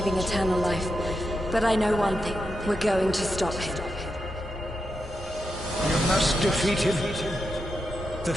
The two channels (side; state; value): both; normal; correlation 0.86